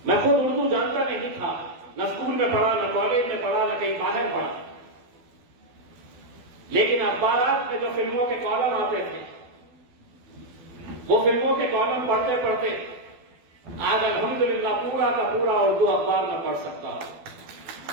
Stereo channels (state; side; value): late; left; 12 ms